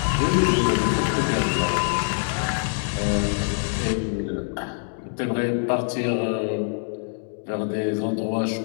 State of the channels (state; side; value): silent; right; 62 dB below the other